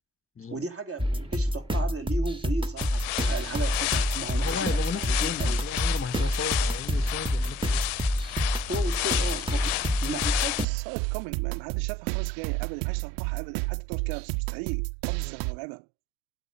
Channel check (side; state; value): left; drops out; at 10.7 s